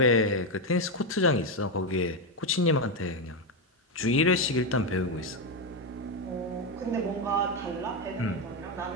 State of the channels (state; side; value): normal; both; correlation 0.07